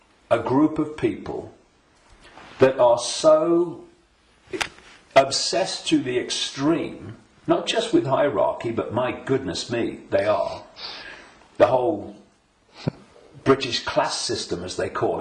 a group of people that are so obsessed to the extreme, not just with hierarchy, but my goodness me, they are. The whole British class system, as they call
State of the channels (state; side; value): identical; both; correlation 1.00